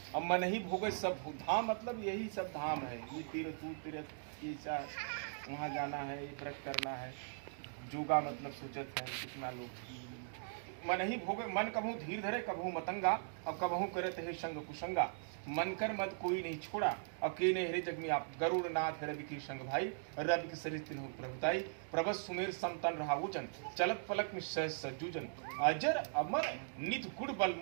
अब मन ही भोगे सब भोग। धाम मतलब यही सब धाम है, ये तीर्थ तीर्थ ये वहाँ जाना है, ये व्रत करना है। जोगा मतलब सोचत है कितना लोग मन ही भोगे। मन कभू धीर धरे कभू मतंगा और कभू करत है संग कुसंगा। मन कर मत कोई नहीं छोड़ा अकेले हरे जग में आप। गरुड़ नाथ रवि की संग भाई रवि के शरीर तिन्हु प्रभुताई। प्रभस सुमेर समतन रहा वचन चलत पलक में सहज सज्जूजन। अजर अमर नित गुड़ बल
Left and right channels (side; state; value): left; silent; digital silence